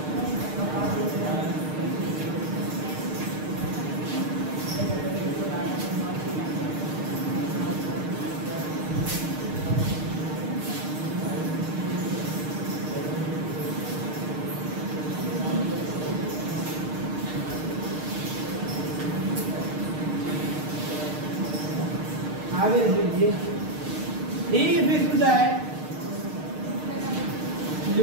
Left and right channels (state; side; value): late; left; 6.5 ms